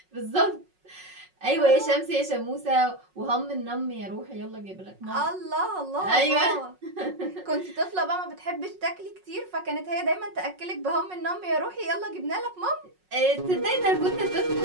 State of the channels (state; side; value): late; left; 5.4 ms